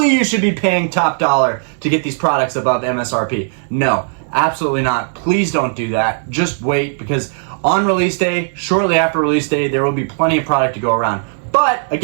you should be paying top dollar to get these products above MSRP. No, absolutely not. Please don't do that. Just wait, because on release day, shortly after release day, there will be plenty of product to go around. But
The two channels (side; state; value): left; silent; digital silence